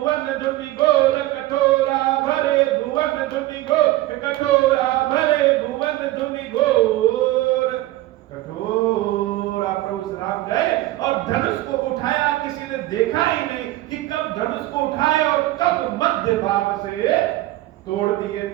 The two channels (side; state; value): left; quieter; 16.8 dB